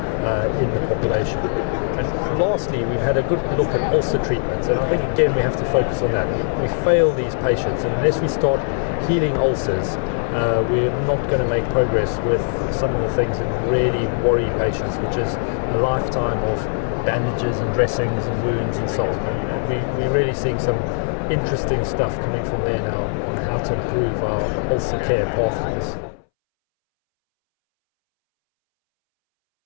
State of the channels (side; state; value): right; silent; 64 dB below the other